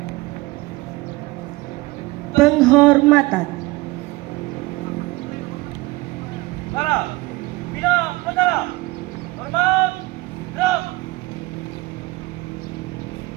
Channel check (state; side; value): quieter; left; 21.6 dB